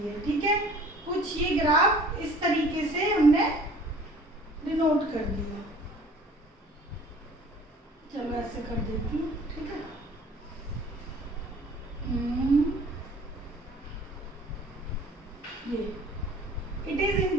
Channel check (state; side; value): normal; both; correlation 0.49